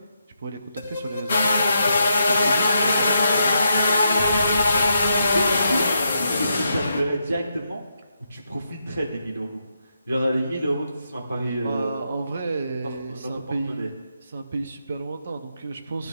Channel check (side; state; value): both; inverted; correlation -0.82